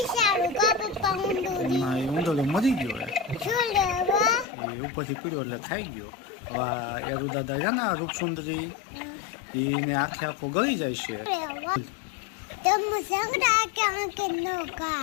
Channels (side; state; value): right; drops out; at 4.5 s